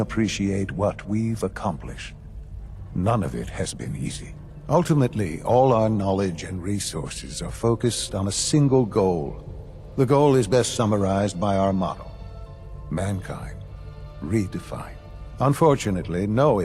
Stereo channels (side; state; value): both; identical; correlation 1.00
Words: appreciate what we've accomplished. None of it has been easy. Ultimately, all our knowledge and resources are focused on a single goal. The goal is best summarized by our motto: mankind, redefined. Unfortunately, no